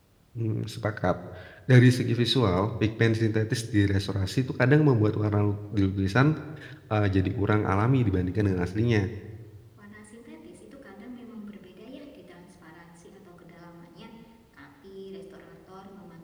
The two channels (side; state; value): both; identical; correlation 1.00